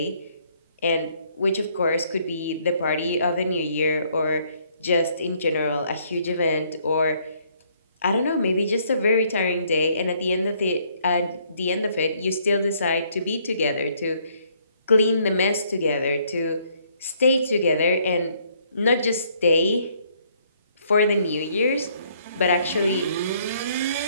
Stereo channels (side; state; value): both; inverted; correlation -0.66